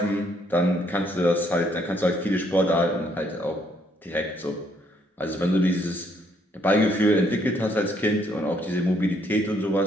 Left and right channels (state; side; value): normal; both; correlation 0.70